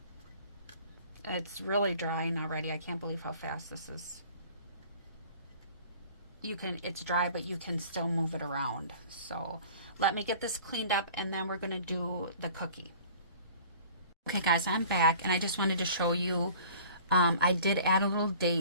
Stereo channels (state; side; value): inverted; both; correlation -0.47